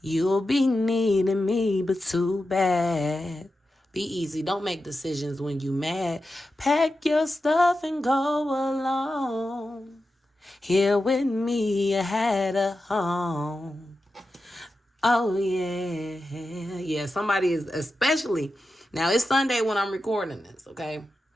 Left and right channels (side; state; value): both; normal; correlation 0.91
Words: be needing me, but too bad. Be easy. Don't make decisions when you mad. Pack your stuff and go alone. Here with me, you had a home. Oh, yeah. Yeah, somebody is, especially, now it's Sunday when I'm recording this, okay?